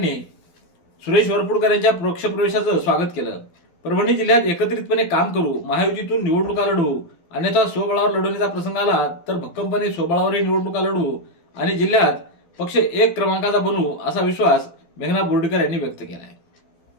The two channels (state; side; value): late; right; 12 ms